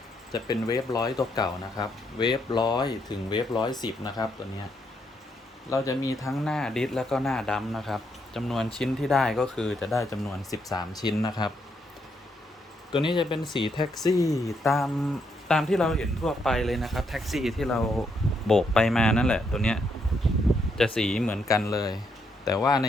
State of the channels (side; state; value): both; normal; correlation 0.76